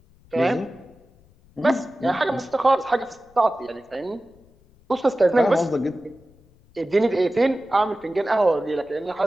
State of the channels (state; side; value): noise; left; rumble, 29 dB below the sound